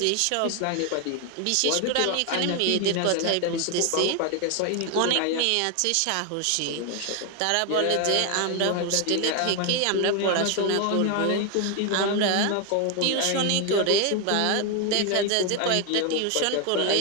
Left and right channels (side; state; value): both; different; correlation 0.01